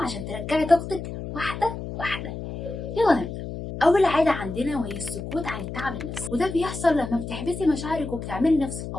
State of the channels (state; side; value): noise; left; hum, 8 dB below the sound